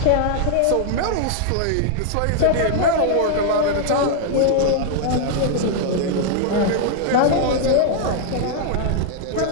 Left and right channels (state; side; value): different; both; correlation -0.01